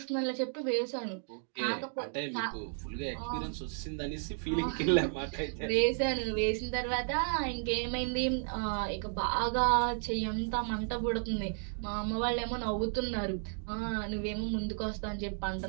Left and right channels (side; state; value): left; silent; 56 dB below the other